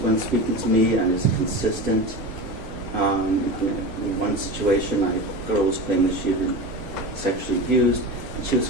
when speaking to me, and is it consistent? In one situation, a girl was claiming that she had been sexually abused, and she was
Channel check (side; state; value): both; normal; correlation 0.27